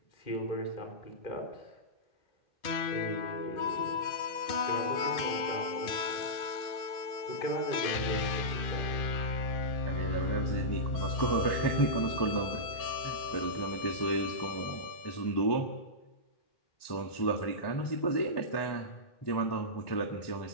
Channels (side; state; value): right; late; 2.4 ms